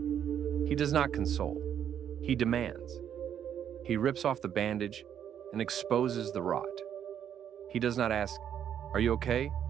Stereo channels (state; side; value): quieter; left; 9.3 dB